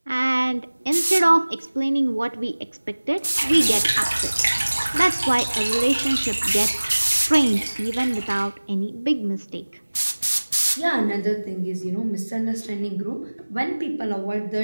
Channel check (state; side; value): inverted; both; correlation -1.00